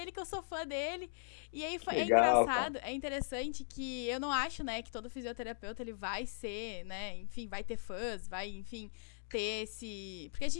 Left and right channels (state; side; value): silent; right; digital silence